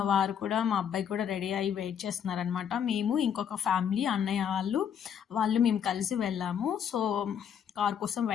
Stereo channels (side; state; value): right; quieter; 8.3 dB